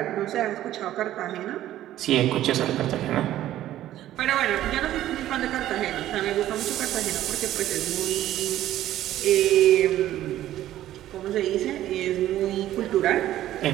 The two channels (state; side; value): quieter; left; 13.3 dB